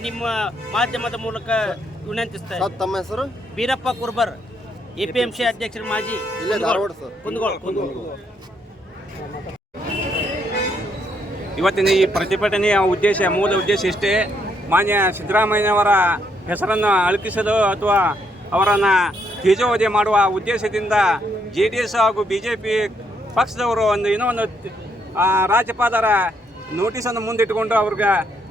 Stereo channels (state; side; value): normal; both; correlation 0.74